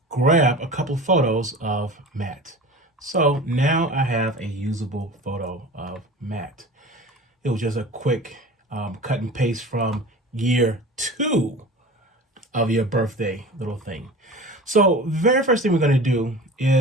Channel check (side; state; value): both; normal; correlation 0.37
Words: grab a couple photos of Matt. So now I have a usable photo of Matt. It was just a quick cut and paste from year 2 of your birthday little thing. So very first thing we're going to do